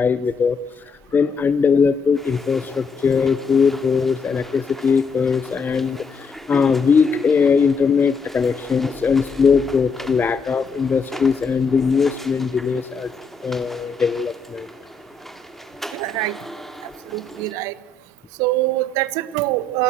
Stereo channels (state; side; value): quieter; right; 3.9 dB